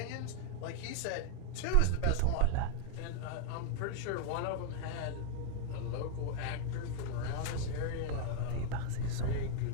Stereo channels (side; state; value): both; different; correlation 0.00